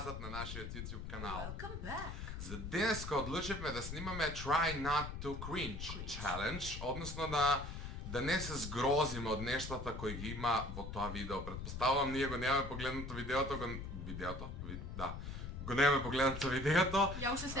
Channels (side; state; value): left; noise; rumble, 7 dB below the sound